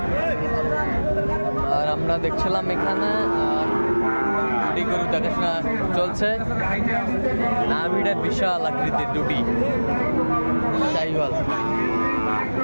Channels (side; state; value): both; inverted; correlation -1.00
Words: আর আমরা দেখছিলাম এখানে দুটি গরু দেখাশোনা চলছে। নাভিটা বিশাল আকৃতির দুটি শাহিওয়াল।